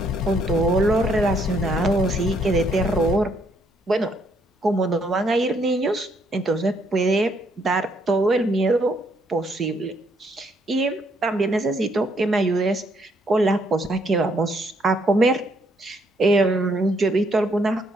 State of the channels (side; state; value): both; normal; correlation 0.71